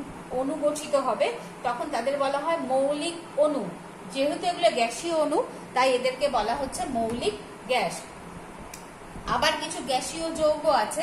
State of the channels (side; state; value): both; identical; correlation 1.00